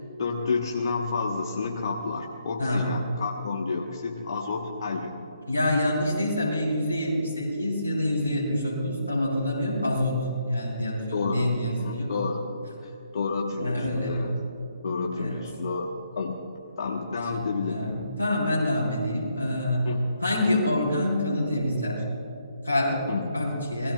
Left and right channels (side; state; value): both; inverted; correlation -0.76